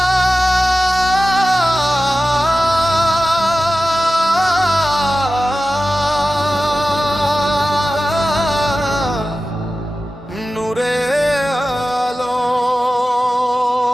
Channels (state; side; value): normal; both; correlation 0.94